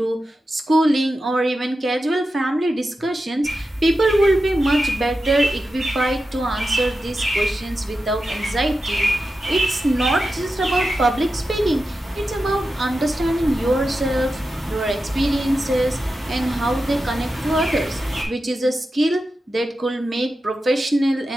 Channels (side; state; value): both; normal; correlation 0.91